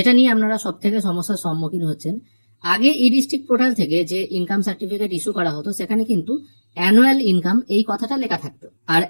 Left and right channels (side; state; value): both; inverted; correlation -1.00